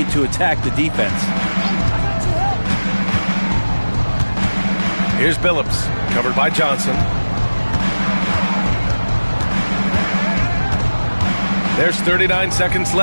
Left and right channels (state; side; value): inverted; both; correlation -1.00